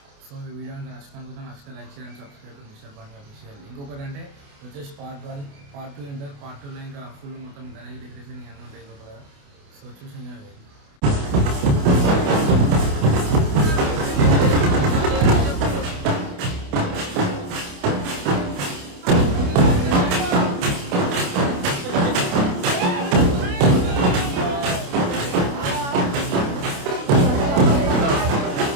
సో ఈ వీడియో అంతా నచ్చితే నచ్చితే లైక్ చేయండి, సబ్స్క్రైబ్ మిస్టర్ బండి అఫీషియల్. ఇంకొకటి అంటే వచ్చేసి పార్ట్ 1 పార్ట్ 2 ఉంటారు. పార్ట్ 2లో ఇంకా ఫుల్ మొత్తం గణేష్ డెకరేషన్ ఇవన్నీ ఉంటాయి లోపల. సో చూసి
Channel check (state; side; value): late; left; 28 ms